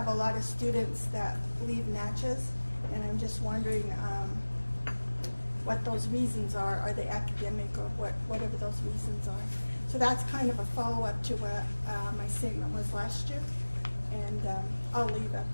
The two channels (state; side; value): inverted; both; correlation -1.00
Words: a lot of students that leave Natchez, and I'm just wondering what those reasons are. Are they academic or whatever those reasons are? So that's kind of a follow-up to what my statement was last year. And I'll leave a